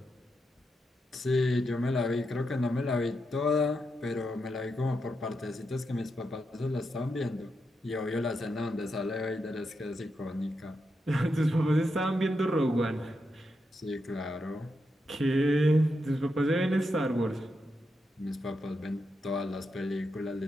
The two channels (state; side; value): normal; both; correlation 0.84